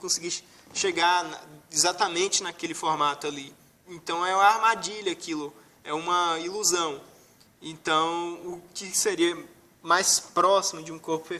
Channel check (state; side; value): identical; both; correlation 1.00